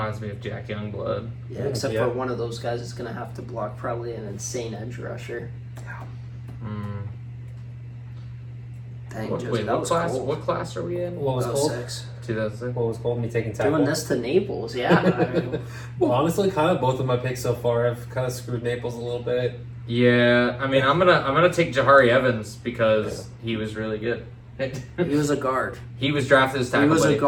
me of Jack Youngblood. Yeah, except Yeah. for one of those guys is gonna have to block probably an insane edge rusher. Mm. Dang, What, Josie, wait, that what was class? cold. What class are we in? What was called? 06. 2006. What was called me taking tackle? Doing this to Naples, yeah. I mean, Well, honestly, kind of both of my picks so far have kind of screwed Naples a little bit. Yeah, I mean, I'm gonna take Jahari Evans because he was really good. he was a guard. He was drafted as He tackle. was a buddy.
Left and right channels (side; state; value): both; identical; correlation 1.00